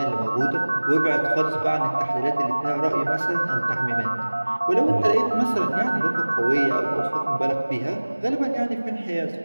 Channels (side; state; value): both; inverted; correlation -1.00